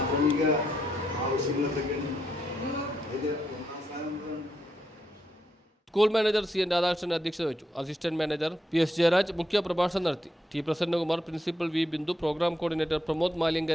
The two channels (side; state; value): both; normal; correlation 0.80